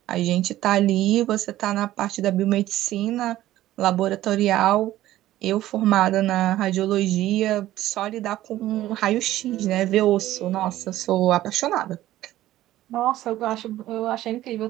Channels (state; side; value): quieter; left; 14.6 dB